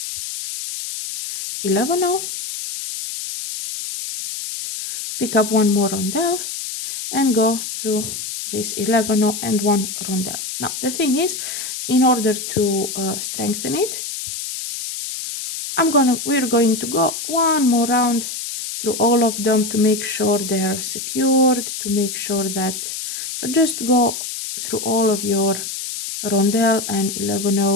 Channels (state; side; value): noise; left; hiss, 6 dB below the sound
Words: 11 now, pick up 1 more rondelle, and go through this 11 and 1 rondelle. Now the thing is, in order to strengthen it, we're going to go 1 more round through all of them to make sure they are secured, to make sure that, so just go through all of your rondelle and 11